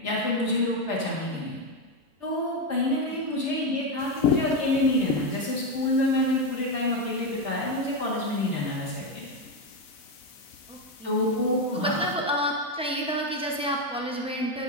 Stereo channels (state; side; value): normal; both; correlation 0.09